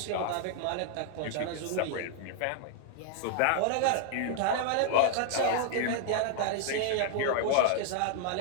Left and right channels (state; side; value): different; both; correlation 0.00